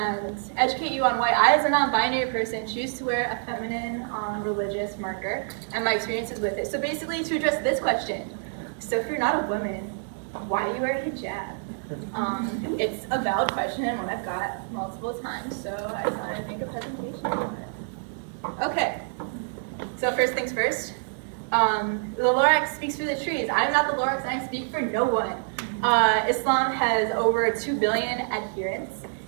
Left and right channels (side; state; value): left; silent; digital silence